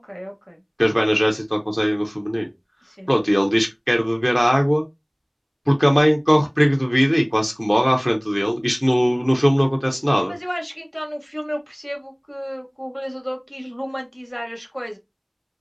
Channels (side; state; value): both; identical; correlation 1.00